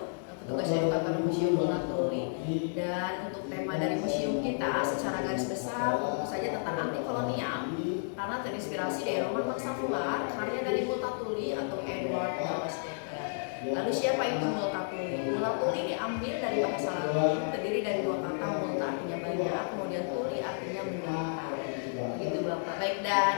petugas edukator Museum Mulatuli. Dan untuk tema dari museum kita secara garis besar tentu saja tentang anti kolonial, karena terinspirasi dari roman Bangsa Fular, karya dari Multatuli atau Edward Thomas Dekker. Lalu siapa itu Multatuli? Multatuli diambil dari bahasa Latin, terdiri dari dua kata, multa artinya banyak, kemudian tuli artinya menderita. Begitu Bapak. Baik,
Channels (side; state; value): right; silent; digital silence